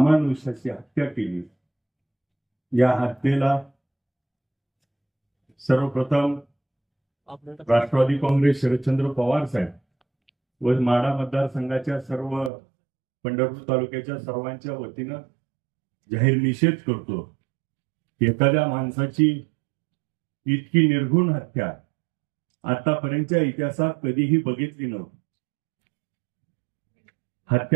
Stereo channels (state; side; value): drops out; left; at 12.5 s